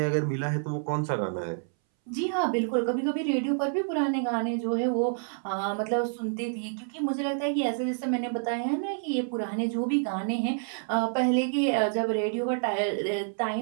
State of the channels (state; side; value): silent; left; 59 dB below the other